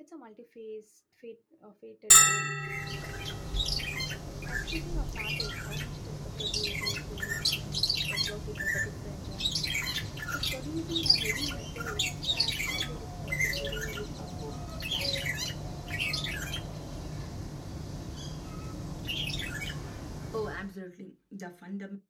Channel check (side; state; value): both; identical; correlation 1.00